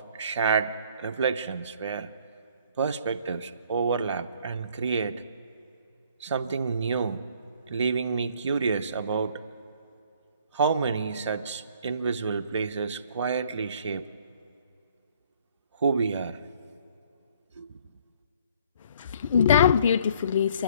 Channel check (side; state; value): both; inverted; correlation -0.59